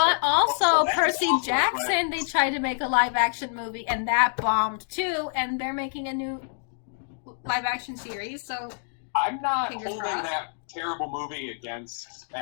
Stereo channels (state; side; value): silent; right; digital silence